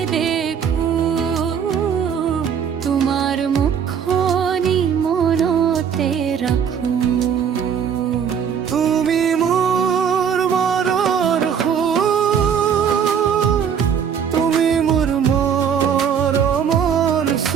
দেখো তোমাৰ মুখনি মনতে ৰাখো তুমি মোৰ মনৰ সুৰ তুমি মোৰ মৰমৰ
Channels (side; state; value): left; quieter; 7.6 dB